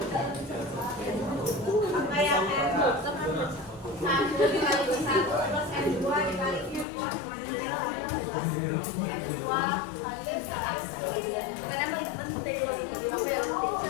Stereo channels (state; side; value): drops out; right; at 6.9 s